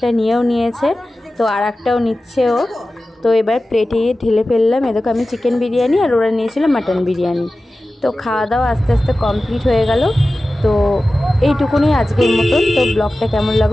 নিয়েও নিয়েছে, তো আর একটাও নিচ্ছে ও। তো এবার প্লেটে ঢেলে ফেললাম। এ দেখো আমি চিকেন বিরিয়ানি আর ওরা নিয়েছিল মাটন বিরিয়ানি। তো খাওয়া দাওয়া আস্তে আস্তে কমপ্লিট হয়ে গেল। তো এইটুকুনি আজকের মতন। তো ব্লগটা কেমন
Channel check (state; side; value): normal; both; correlation 0.95